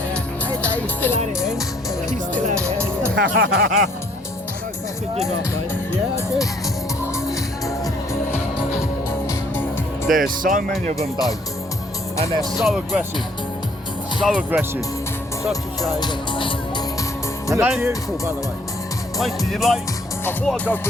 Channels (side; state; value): both; normal; correlation 0.63